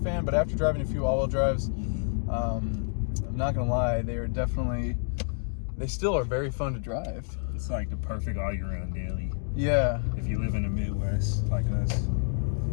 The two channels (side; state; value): right; silent; digital silence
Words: fan, but after driving a few all-wheel drives, I'm not gonna lie, they still are very fun to drive. It's like the perfect all-year-round daily. Yeah. If you live in the Midwest like us.